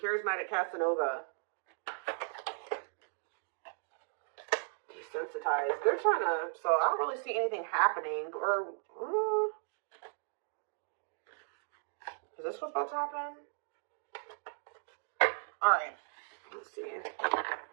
Casanova? Desensitized. They're trying to, so I don't really see anything happening. Or, is this what's about to happen? Alright. Let's see.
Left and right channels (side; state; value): left; silent; digital silence